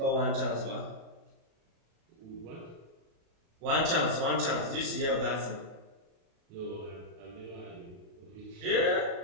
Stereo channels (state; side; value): late; left; 36 ms